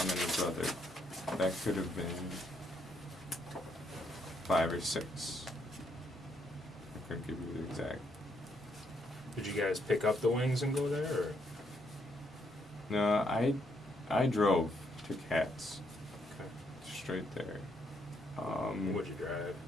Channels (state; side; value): normal; both; correlation 0.74